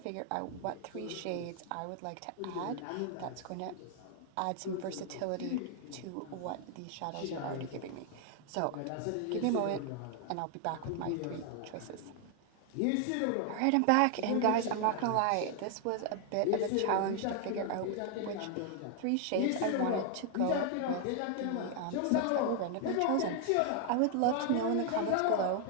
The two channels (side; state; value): both; different; correlation 0.00